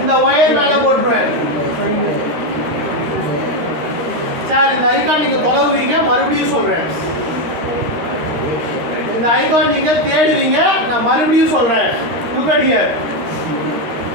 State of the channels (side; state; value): left; late; 13 ms